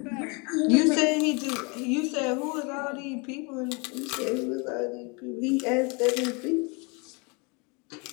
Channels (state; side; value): quieter; right; 31.0 dB